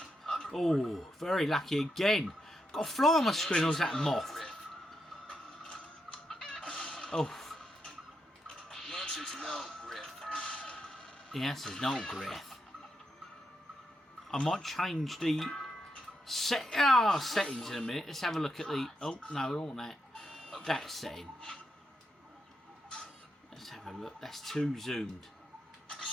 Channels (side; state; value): both; normal; correlation 0.83